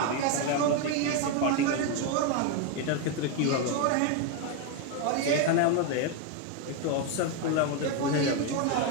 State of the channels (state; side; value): different; both; correlation 0.01